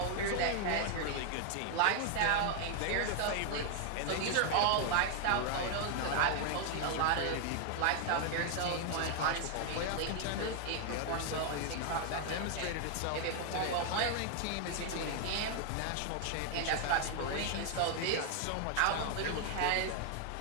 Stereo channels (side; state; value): both; different; correlation 0.00